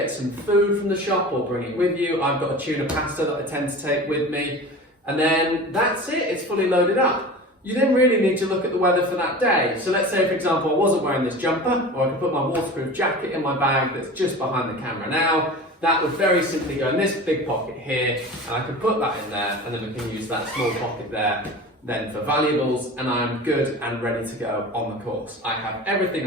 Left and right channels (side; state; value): both; normal; correlation 0.35